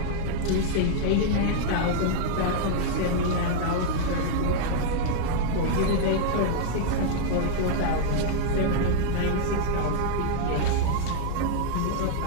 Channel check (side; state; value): both; different; correlation -0.01